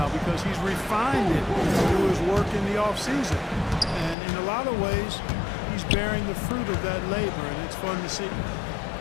because he's refined it through his work in the offseason. And in a lot of ways, he's bearing the fruit of that labor, and it's fun to see.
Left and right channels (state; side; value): drops out; right; at 4.2 s